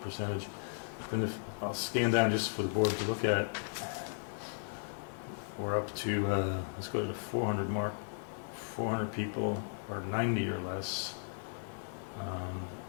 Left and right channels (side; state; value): right; silent; 54 dB below the other